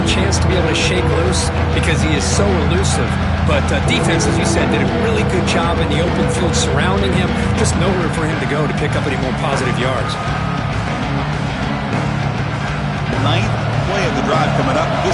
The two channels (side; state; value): both; identical; correlation 1.00